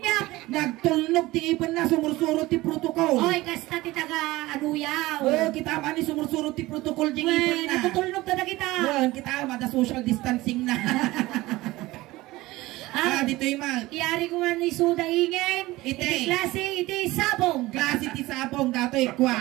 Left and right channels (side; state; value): left; quieter; 19.0 dB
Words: Nagtulnog ti ipon na. Sumursuro ti protocol. Oy, kasta ti taga anuyaw. Kita man ni sumursuro ti protocol di ipon na. Natutulnog na kita. Kita mada social distancing na. Dito yung mag. Iyari ko nga ni Suda Ingen. Iti klase, iti sabong. Klase ti sabong. Dato